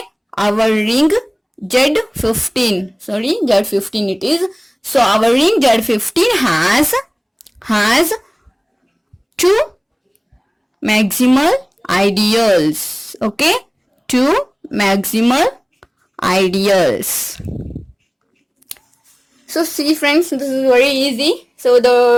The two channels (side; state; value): both; identical; correlation 1.00